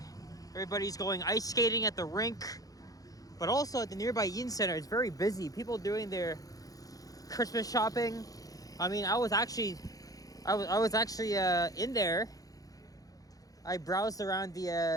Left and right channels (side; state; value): right; late; 0.17 ms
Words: Everybody's going ice skating at the rink, but also at the nearby Yin Center. It's very busy. People doing their Christmas shopping. I mean, I was actually in there. I browsed around